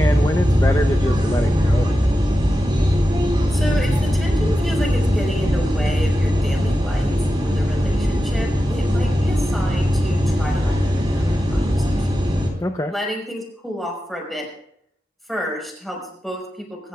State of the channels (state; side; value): normal; both; correlation 0.91